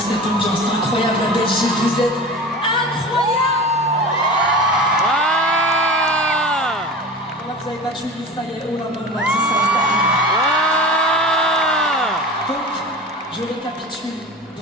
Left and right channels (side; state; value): both; normal; correlation 0.33